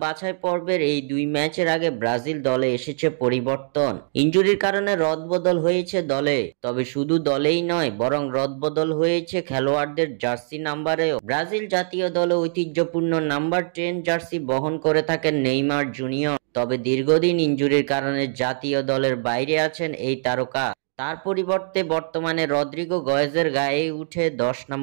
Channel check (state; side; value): silent; left; digital silence